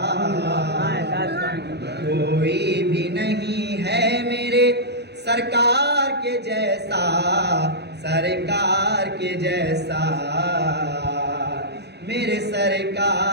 کوئی بھی نہیں ہے میرے سرکار کے جیسا، سرکار کے جیسا، میرے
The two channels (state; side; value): late; left; 0.49 ms